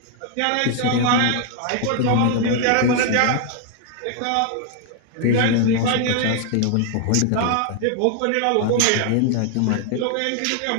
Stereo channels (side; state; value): both; different; correlation 0.00